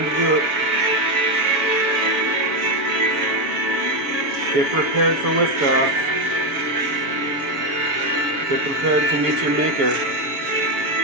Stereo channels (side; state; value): left; late; 7.5 ms